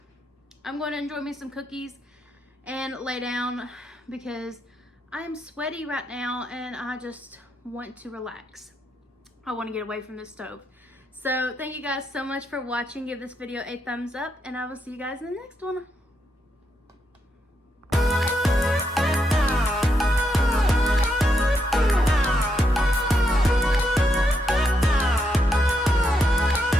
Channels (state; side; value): normal; both; correlation 0.80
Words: I'm going to enjoy me some cookies and lay down because I am sweaty right now, and I just want to relax. I want to get away from this stove. So thank you guys so much for watching. Give this video a thumbs up, and I will see you guys in the next one.